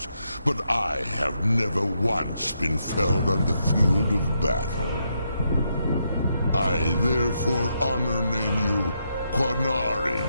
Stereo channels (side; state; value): both; inverted; correlation -0.80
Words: but I have never once been felled on the field of battle. I therefore honor name you